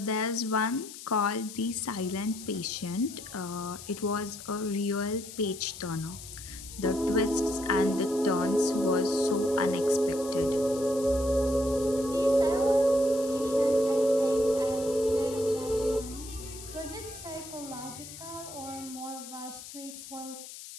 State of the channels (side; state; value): left; noise; hiss, 13 dB below the sound